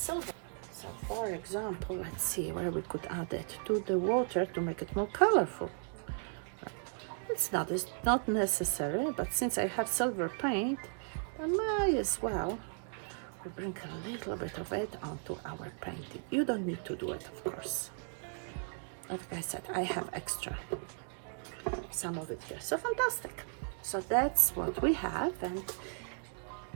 So for example, let's see where we could add it to the water to make it more colorful. It's not necessary, but since I have silver paint, I might as well bring a little bit of it onto our painting. You don't need to do it, of course. Like I said, I have extra, some of it here. So fantastic. So that's what we have, and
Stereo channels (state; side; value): silent; left; 54 dB below the other